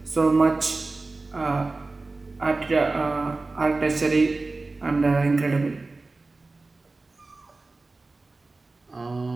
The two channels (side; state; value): left; quieter; 3.4 dB